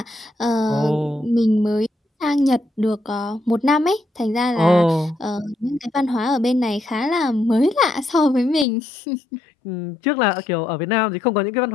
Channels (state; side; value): drops out; right; at 8.7 s